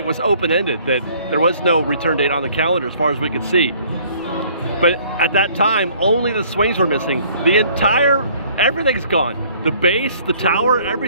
was open-ended, that there was no return date on the calendar as far as we could see. But at that time, only the swings were missing. Everything's gone. The base, the tower,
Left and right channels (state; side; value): inverted; both; correlation -0.58